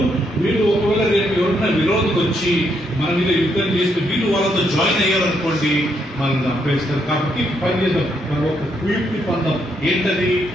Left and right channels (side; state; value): both; normal; correlation 0.76